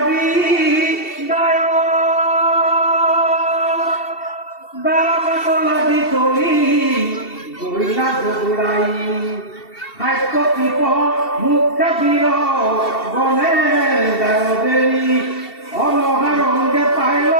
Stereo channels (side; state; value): right; late; 2.7 ms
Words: মুখে দিল বনে দেরি অনহারঙ্গে পাইল